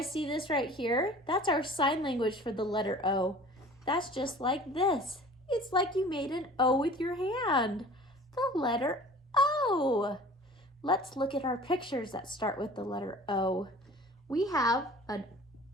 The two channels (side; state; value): both; normal; correlation 0.45